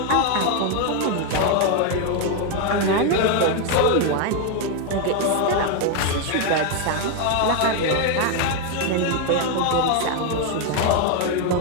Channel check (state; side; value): different; both; correlation 0.01